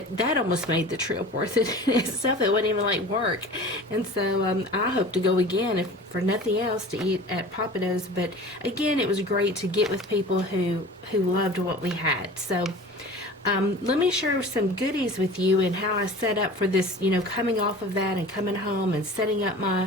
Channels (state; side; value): normal; both; correlation 0.39